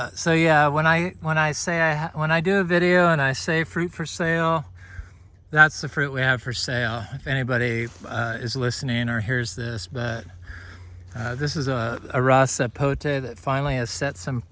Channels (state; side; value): identical; both; correlation 1.00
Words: yeah, when I do a video and I say fruit for sale, that's the fruit we have for sale. If anybody is listening or hears this, but this is a raw sapote that finally has set some